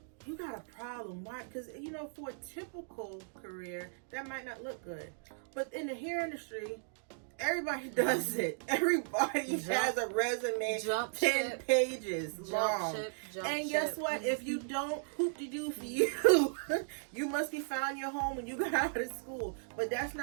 you got a problem. Why? Because, for a typical career, that might not look good. But in the hair industry, everybody does it. Everybody has a resume 10 pages long. And guess what? If you don't, hoop-de-doo for you. You must be found your home when you got out of school. But that's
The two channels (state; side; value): silent; left; digital silence